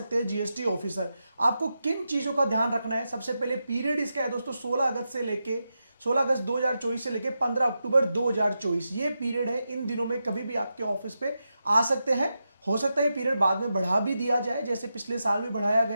हैं जीएसटी ऑफिसर। आपको किन चीजों का ध्यान रखना है? सबसे पहले पीरियड इसका है दोस्तों 16 अगस्त 2024 से लेके 15 अक्टूबर 2024, ये पीरियड है। इन दिनों में कभी भी आपके ऑफिस पे आ सकते हैं। हो सकता है ये पीरियड बाद में बढ़ा भी दिया जाए, जैसे पिछले साल भी बढ़ाया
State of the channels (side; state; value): both; inverted; correlation -0.88